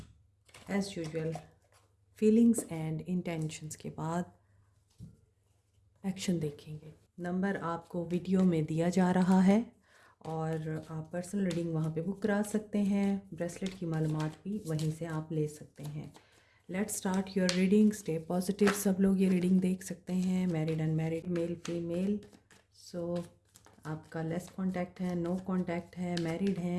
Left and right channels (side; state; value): both; identical; correlation 1.00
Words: as usual feelings and intentions के बाद एक्शन देखेंगे। नंबर आपको वीडियो में दिया जा रहा है और आप पर्सनल रीडिंग वहाँ पे बुक करा सकते हैं। ब्रेसलेट की मालूमात भी वहीं से आप ले सकते हैं। Let's start your reading. Stay positive. सब लोग ये रीडिंग देख सकते हैं, मैरिड अनमैरिड, मेल फीमेल। सो आपका लेस कांटेक्ट है, नो कांटेक्ट है, मैरिड